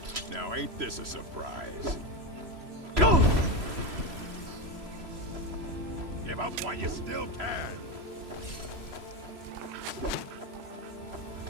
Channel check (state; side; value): late; left; 3.0 ms